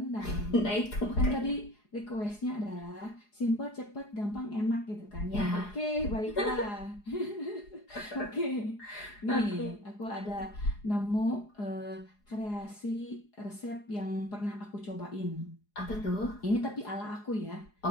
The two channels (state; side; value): late; right; 4.8 ms